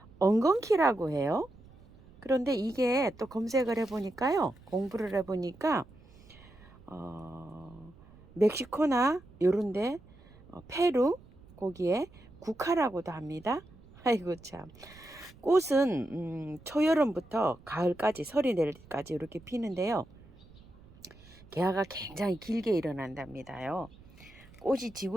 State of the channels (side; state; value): right; noise; rumble, 23 dB below the sound